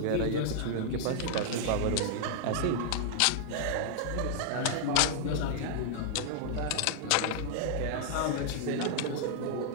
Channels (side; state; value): both; different; correlation -0.01